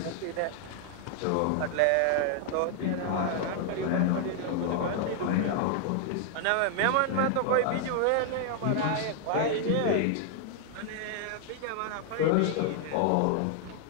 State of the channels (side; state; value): both; different; correlation 0.00